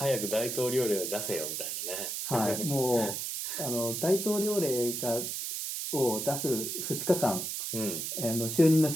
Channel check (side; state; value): right; noise; hiss, 3 dB below the sound